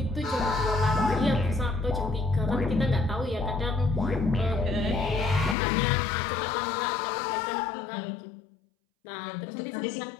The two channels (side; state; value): right; drops out; at 5.6 s